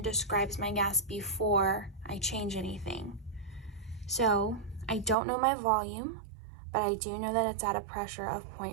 describes my gas before I change anything. So I don't know my volume, but I do know that it's at a pressure of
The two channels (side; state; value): left; drops out; at 5.2 s